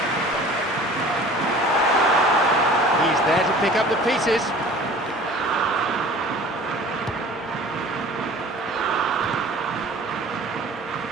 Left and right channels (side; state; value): both; normal; correlation 0.45